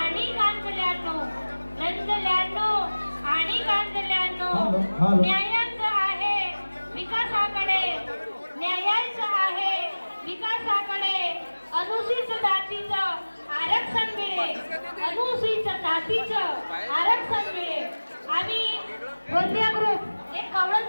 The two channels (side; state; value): both; inverted; correlation -1.00